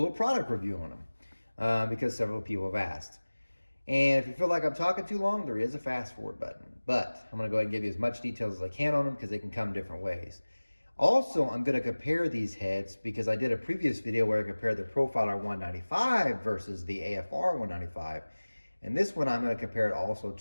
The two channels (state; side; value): inverted; both; correlation -1.00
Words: product review on them because several people have asked. And if you feel like I'm talking too long, there is a fast forward button. But I'm going to go ahead and give you as much details as I can on them because they can come different ways. Also, I'm going to compare these heads because I did a previous video where I compared the Profiler 195 versus the AFR 195. And this one, I'm going to compare it also